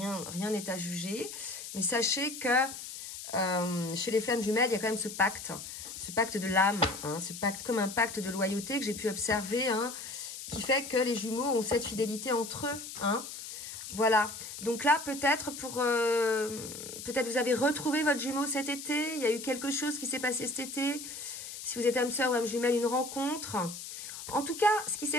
n'est à juger. Mais sachez que chez les flammes jumelles, il y a quand même ce pacte de l'âme, hein, ce pacte comme un pacte de loyauté que j'ai pu observer, hein, qui fait que les jumeaux ont cette fidélité entre eux, hein. Voilà, donc là peut-être peut-être vous avez retrouvé votre jumeau cet été, il y a eu quelque chose qui s'est passé cet été, si vous êtes âme sœur ou âme jumelle, une rencontre. En tout cas, ce qui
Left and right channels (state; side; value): noise; left; hiss, 10 dB below the sound